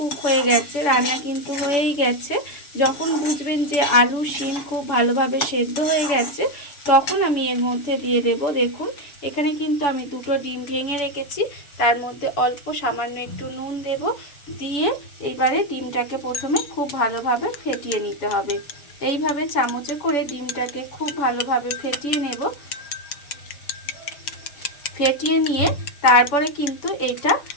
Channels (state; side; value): late; right; 7.0 ms